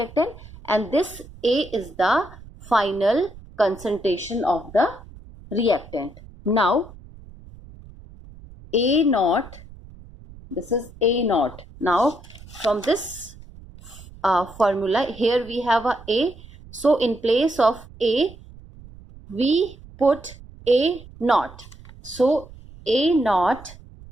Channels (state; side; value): noise; right; rumble, 19 dB below the sound